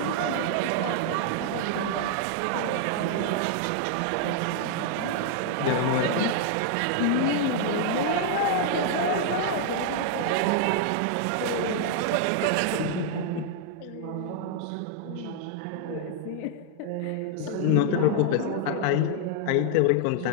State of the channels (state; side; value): different; both; correlation -0.01